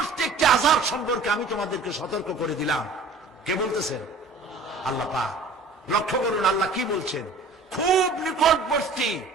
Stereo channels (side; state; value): left; quieter; 3.5 dB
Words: একটি আযাব সম্পর্কে আমি তোমাদেরকে সতর্ক করে দিলাম। কে বলতেছেন? আল্লাহ পাক। লক্ষ্য করুন আল্লাহ কি বলছেন। খুব নিকটবর্তী